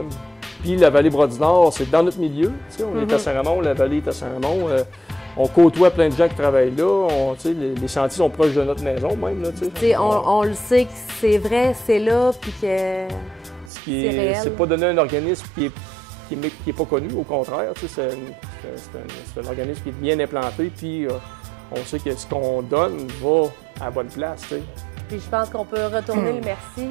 Puis la vallée Bras-du-Nord, c'est dans notre milieu. On est à Saint-Raymond, la vallée est à Saint-Raymond. On côtoie plein de gens qui travaillent là. Les sentiers sont proches de notre maison même. Là, on le sait que c'est vrai, c'est là, puis que... C'est pas donné à un organisme qui est pas connu, au contraire. C'est un organisme qui est bien implanté, puis on sait que ce qu'on donne va à la bonne place. T'sais. Puis je pense qu'on peut retourner le merci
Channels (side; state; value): left; drops out; at 13.7 s